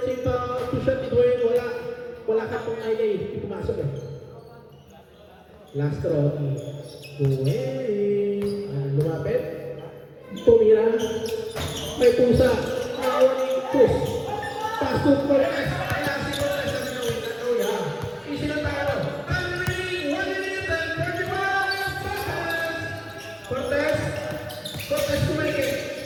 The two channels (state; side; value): identical; both; correlation 1.00